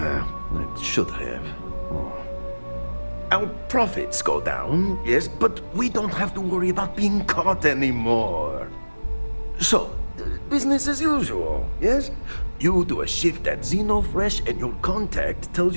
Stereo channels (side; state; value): both; inverted; correlation -1.00